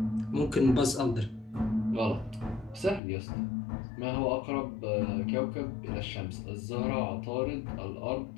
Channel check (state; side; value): drops out; right; at 3.0 s